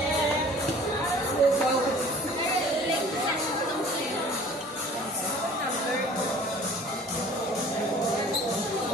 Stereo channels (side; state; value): both; normal; correlation 0.49